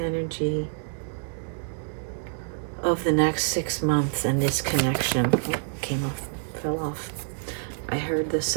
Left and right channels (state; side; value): silent; left; digital silence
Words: of the next 6 months and this connection? Oh, fell off. I heard the